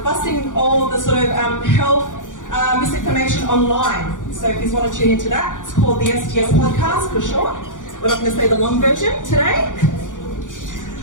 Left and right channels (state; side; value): late; right; 0.87 ms